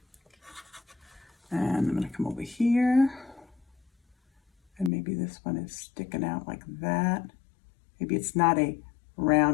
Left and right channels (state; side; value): drops out; right; at 4.9 s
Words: And I'm going to come over here. And maybe this one is sticking out like that. Maybe it's not a